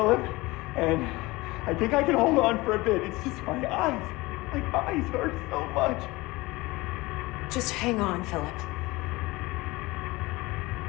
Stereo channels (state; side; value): quieter; right; 21.5 dB